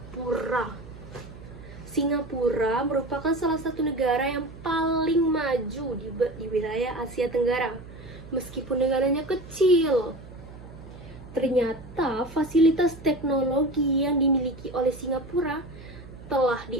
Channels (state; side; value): noise; right; hum, 16 dB below the sound